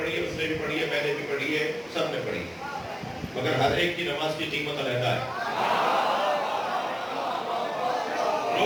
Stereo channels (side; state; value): both; identical; correlation 1.00